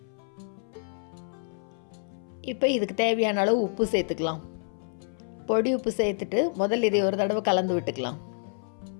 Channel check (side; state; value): right; silent; 59 dB below the other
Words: இப்போ இதுக்கு தேவையான அளவு உப்பு சேர்த்துக்கலாம். பொடி உப்பு சேர்த்துட்டு முதல்ல இதை ஒரு தடவை கலந்து விட்டுக்கலாம்.